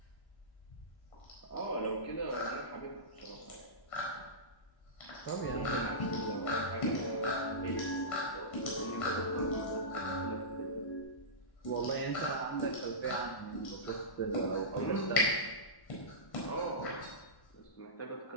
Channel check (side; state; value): right; late; 1.1 ms